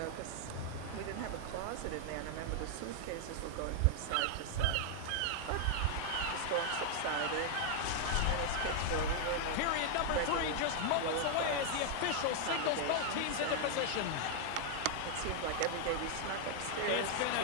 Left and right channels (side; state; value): both; different; correlation 0.00